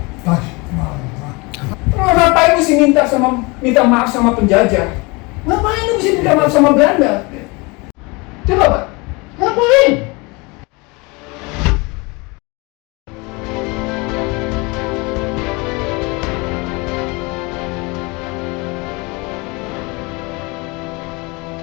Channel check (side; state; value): right; quieter; 26.8 dB